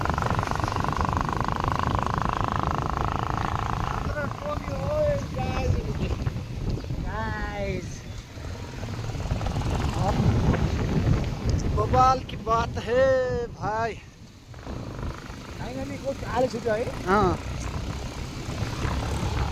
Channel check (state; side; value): identical; both; correlation 1.00